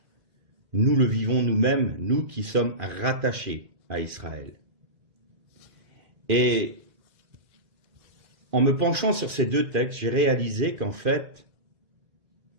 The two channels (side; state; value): left; late; 2.0 ms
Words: nous le vivons nous-mêmes, nous qui sommes rattachés à Israël. Et en me penchant sur ces deux textes, j'ai réalisé qu'en fait,